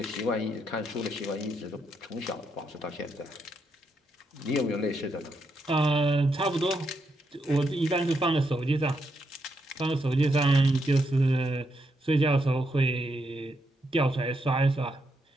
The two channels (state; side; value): normal; both; correlation 0.80